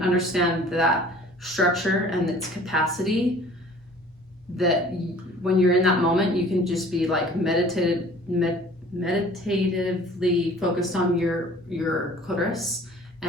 understand that structure and its capacity, that when you're in that moment, you can just be like meditatively focused on your clitoris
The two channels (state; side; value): normal; both; correlation 0.50